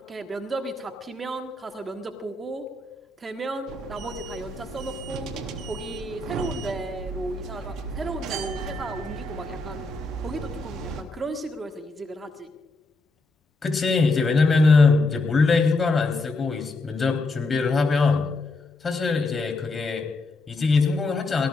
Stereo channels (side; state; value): right; quieter; 3.1 dB